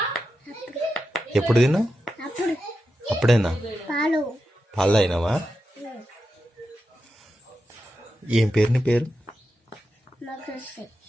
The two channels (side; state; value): both; normal; correlation 0.89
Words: ఎప్పుడు తిన్నావు? అప్పుడు అప్పుడేనా? పాలు పాలు అయినావా? ఏం పేరు నీ పేరు? మోక్షి